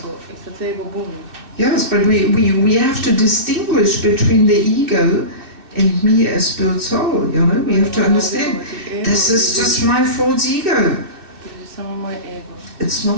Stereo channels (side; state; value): left; late; 2.6 ms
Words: Yes, but we have to distinguish between the ego and me as spirit soul, you know. We have to understand, this is just my false ego. It's